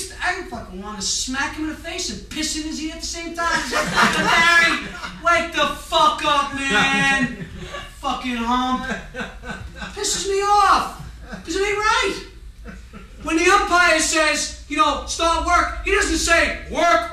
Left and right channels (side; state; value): both; identical; correlation 1.00